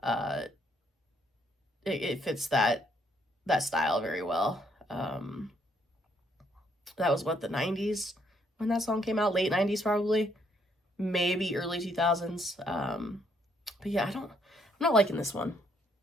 It fits that style very well. That was what, the 90s when that song came out? Late 90s probably. Maybe early 2000s. But yeah, I'm not liking this one.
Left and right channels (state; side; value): normal; both; correlation 0.70